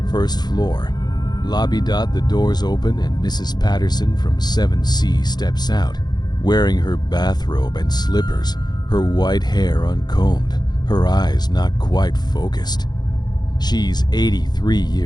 1st floor. Lobby. The doors open and Mrs. Patterson from 7C steps out, wearing her bathrobe and slippers, her white hair uncombed, her eyes not quite focused. She's 83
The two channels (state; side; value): late; right; 0.20 ms